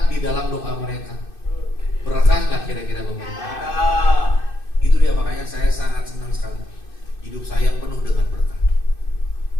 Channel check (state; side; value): late; right; 2.6 ms